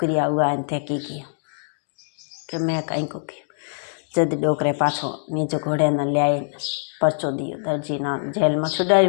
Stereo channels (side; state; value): right; silent; digital silence